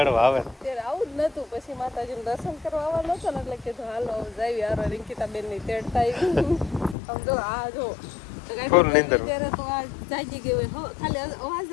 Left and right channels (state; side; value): drops out; right; at 7.0 s